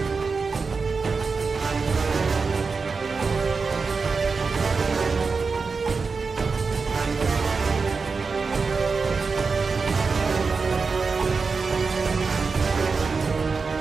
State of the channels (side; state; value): left; quieter; 4.7 dB